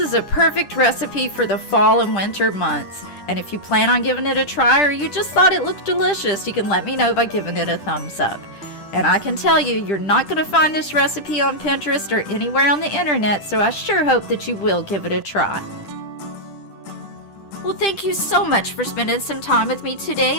a perfect recipe for the fall and winter months. And if you plan on giving it a try or you just thought it looked delicious, you can let me know by giving it a thumbs up. And I can tell you, you're not going to find this recipe on Pinterest or anywhere on the internet, so I sure hope that you will give it a try. Well, thank you so much for spending some time with me today,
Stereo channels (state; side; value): late; right; 10 ms